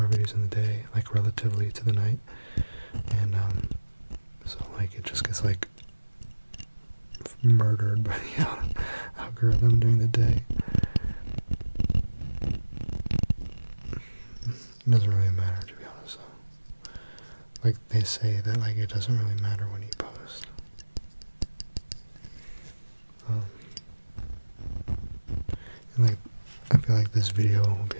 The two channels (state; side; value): inverted; both; correlation -1.00